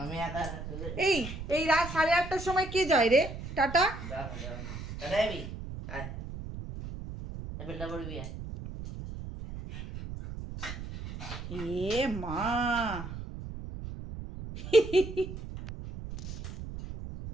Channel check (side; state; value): right; noise; rumble, 9 dB below the sound